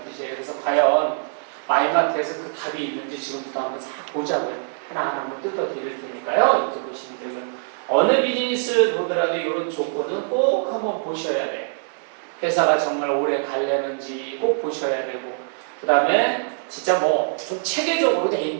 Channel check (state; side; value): silent; left; digital silence